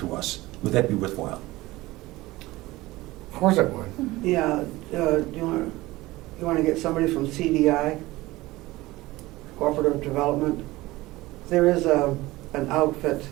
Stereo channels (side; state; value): left; quieter; 19.2 dB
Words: us, would that be worthwhile? Of course it would. Yeah, you want to get somebody from CDI, Cooperative Development? There is an outfit